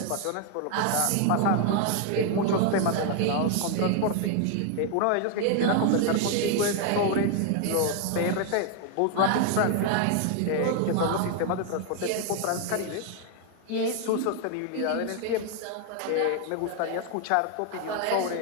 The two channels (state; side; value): different; both; correlation 0.00